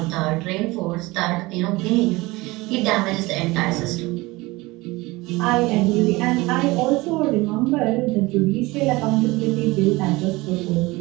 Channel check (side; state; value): left; quieter; 21.7 dB